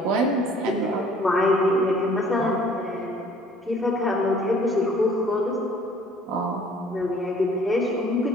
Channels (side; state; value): both; normal; correlation 0.55